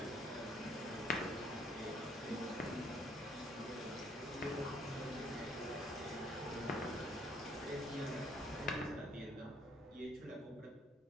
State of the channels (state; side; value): normal; both; correlation 0.64